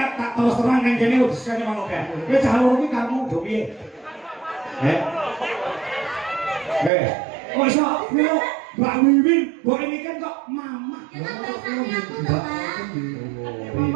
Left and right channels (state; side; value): drops out; left; at 6.9 s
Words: tak terus terang nang kene wis kene ngono kae. Kowe cah loro iki kamu do piye? Kok iso nyeluk Mbak Wiwi, mbok ini kan kok mamah. Ya kan bahasane aku to, Pak.